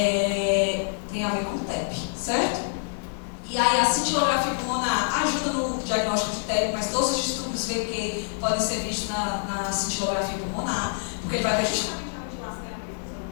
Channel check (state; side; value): silent; right; 61 dB below the other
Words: Tem a ver com TEP, certo? E aí a cintilografia pulmonar ajuda no diagnóstico de TEP, mas todos os distúrbios VQ podem ser vistos na cintilografia pulmonar, porque ele vai ver justamente a vigilação e a previsão.